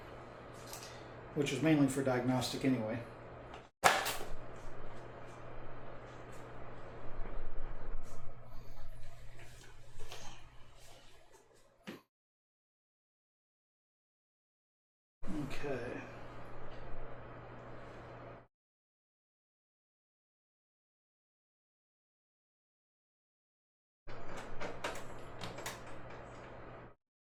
which is mainly for diagnostic anyway. Okay.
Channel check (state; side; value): identical; both; correlation 1.00